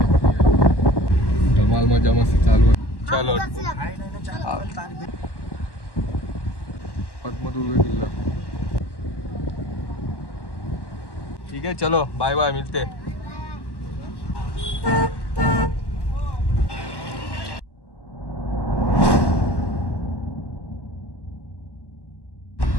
धमाल मजा मस्ती चालू आहे. चलो पद्मदुर्ग किल्ला. ठीक है, चलो बाय बाय, मिलते.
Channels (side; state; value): right; late; 1.1 ms